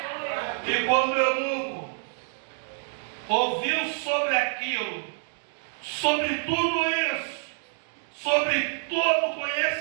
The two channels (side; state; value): left; silent; 60 dB below the other